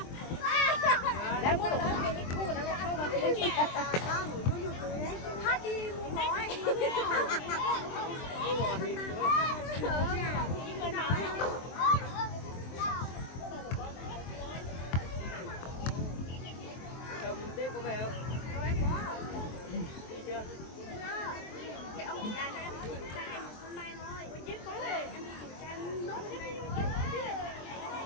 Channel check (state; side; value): late; right; 23 ms